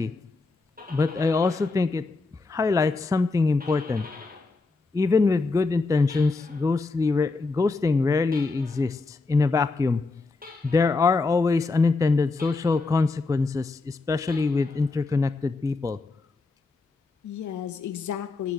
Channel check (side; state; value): right; quieter; 3.7 dB